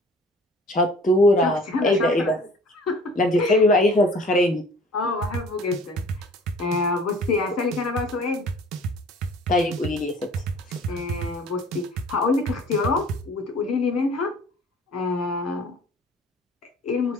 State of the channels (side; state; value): both; normal; correlation 0.49